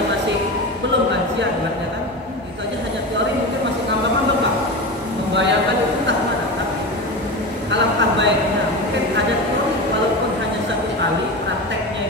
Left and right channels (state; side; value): normal; both; correlation 0.24